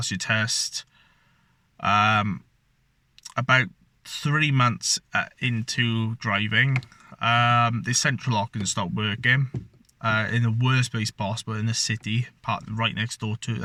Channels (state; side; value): identical; both; correlation 1.00